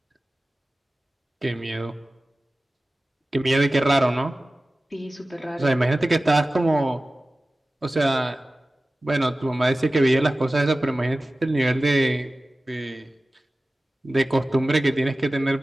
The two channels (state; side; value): normal; both; correlation 0.97